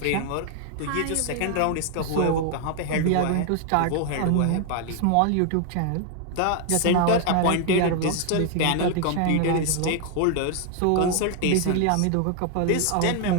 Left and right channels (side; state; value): both; different; correlation 0.00